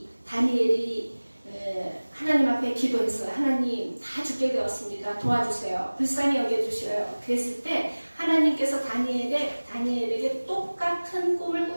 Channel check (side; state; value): both; inverted; correlation -1.00